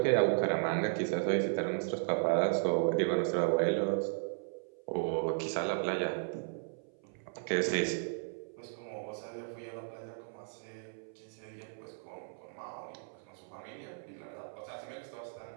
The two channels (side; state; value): left; silent; 54 dB below the other